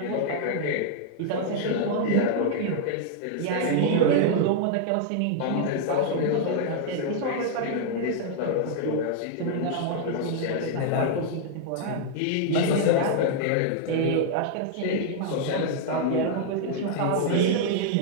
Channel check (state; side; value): different; both; correlation -0.01